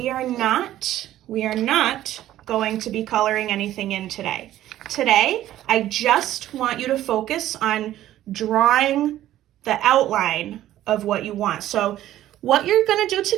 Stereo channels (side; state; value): left; quieter; 13.4 dB